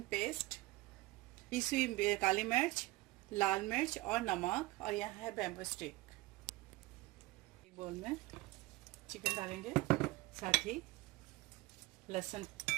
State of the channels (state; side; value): quieter; left; 19.7 dB